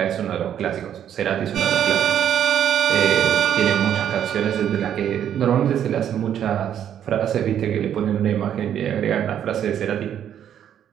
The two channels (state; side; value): quieter; left; 9.8 dB